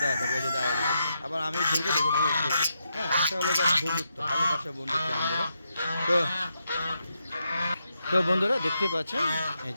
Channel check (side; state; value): both; inverted; correlation -0.83